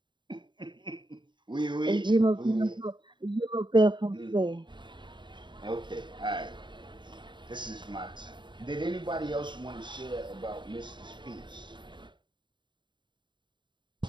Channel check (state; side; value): late; left; 0.23 ms